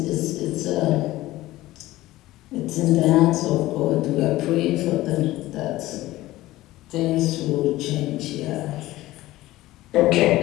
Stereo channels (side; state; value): right; quieter; 16.9 dB